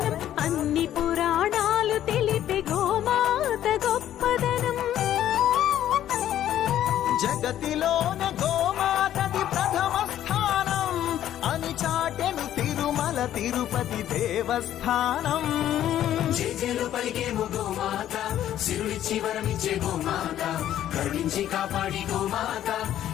అన్ని పురాణాలు తెలిపే గోమాత గొప్పదనం జగతిలోన గోమాతది ప్రథమ స్థానం అని చాటెను తిరుమల తిరుపతి దేవస్థానం జేజేలు పలికేము గోమాత సిరులిచ్చి వరమిచ్చే గోమాత కరుణించి కాపాడి గోమాత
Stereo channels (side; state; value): right; quieter; 11.7 dB